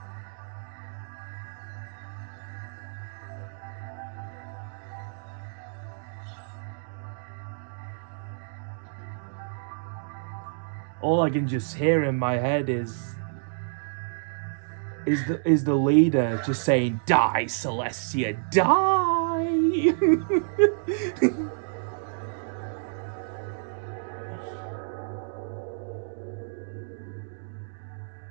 All I can just hear in my head is the leader just saying, "Die, Celestia, die!"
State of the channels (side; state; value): left; silent; digital silence